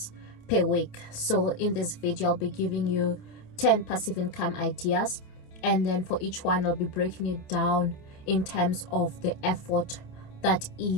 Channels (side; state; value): right; late; 27 ms